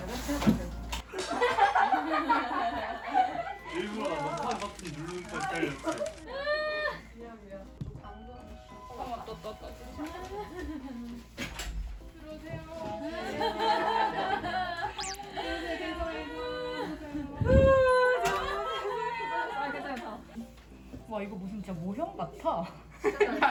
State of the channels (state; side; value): identical; both; correlation 1.00